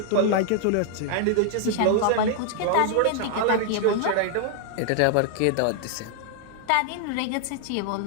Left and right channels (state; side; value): different; both; correlation 0.00